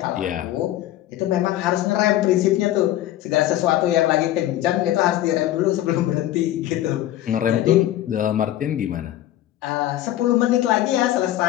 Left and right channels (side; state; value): right; quieter; 13.6 dB